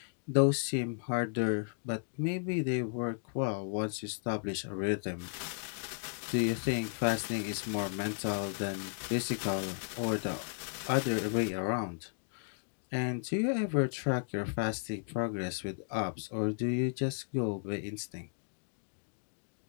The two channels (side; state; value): right; silent; digital silence